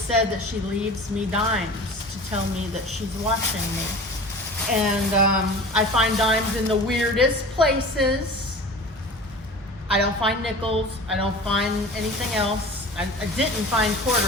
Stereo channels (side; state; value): both; normal; correlation 0.38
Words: that she leaves me dimes to tell me that she's watching me. And I find dimes in the weirdest places. I don't find nickels. I don't find anything else. I didn't find